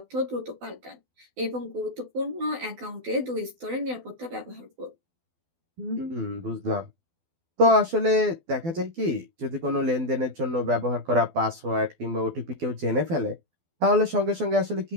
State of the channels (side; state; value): left; late; 12 ms